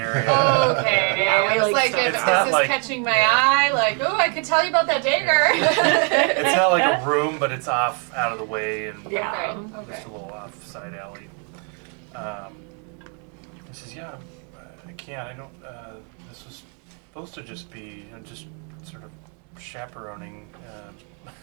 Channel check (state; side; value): quieter; left; 38.9 dB